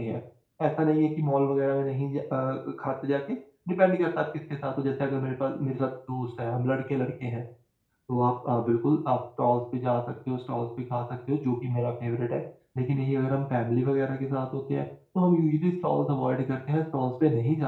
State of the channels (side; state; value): both; identical; correlation 1.00